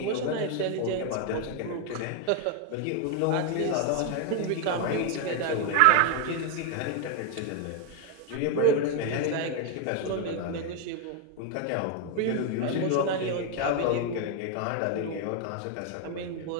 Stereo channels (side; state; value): both; different; correlation 0.01